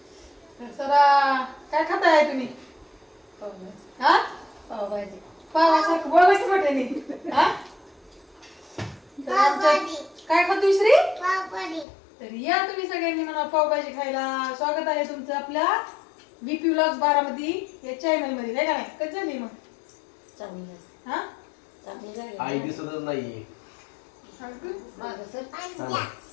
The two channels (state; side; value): drops out; right; at 11.9 s